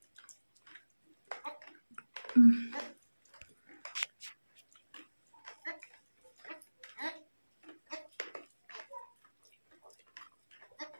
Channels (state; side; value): inverted; both; correlation -1.00